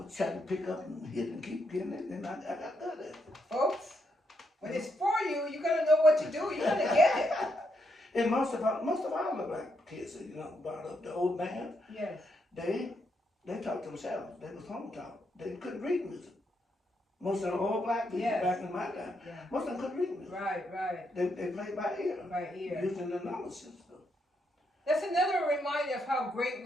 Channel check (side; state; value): both; normal; correlation 0.79